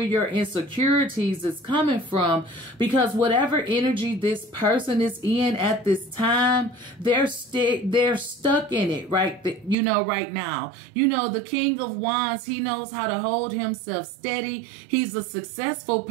your insecurities is coming from, because whatever energy this person is in at this time, they're stuck in it, right? You know, right now. You know, the King of Wands, he knows how to hold himself steady. He's a successful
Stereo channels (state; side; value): drops out; left; at 9.8 s